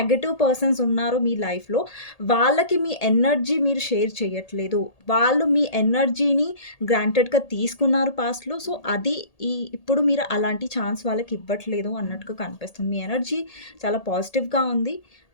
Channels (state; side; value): late; right; 1.8 ms